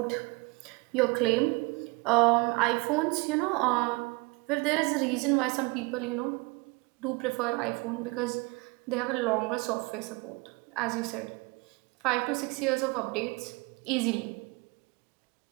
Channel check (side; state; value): left; quieter; 26.9 dB